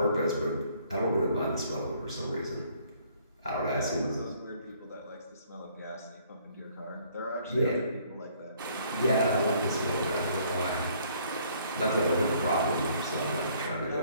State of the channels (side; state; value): both; inverted; correlation -0.62